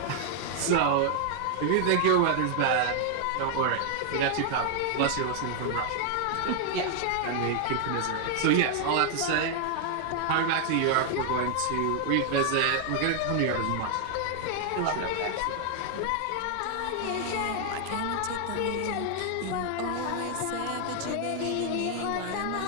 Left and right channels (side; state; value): both; different; correlation 0.00